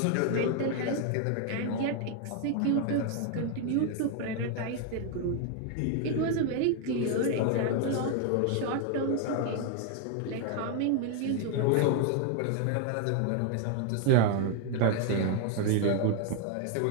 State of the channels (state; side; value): different; both; correlation 0.00